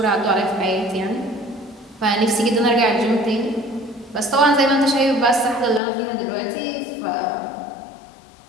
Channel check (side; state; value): right; drops out; at 5.8 s